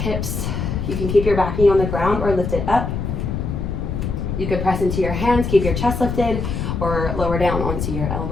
You can keep your back knee on the ground or lift it up. You could press into your hands, keep your chest lifted, or lower down onto your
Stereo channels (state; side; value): noise; left; rumble, 3 dB below the sound